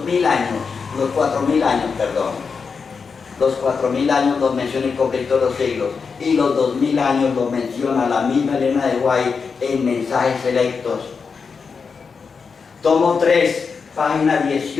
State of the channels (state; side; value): quieter; right; 5.4 dB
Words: años, los 4000 años, perdón. Los 4000 años los menciona el conflicto de los siglos, y los 2000 años los menciona la misma Elena de White en Mensajes Selectos. Tomo 3, página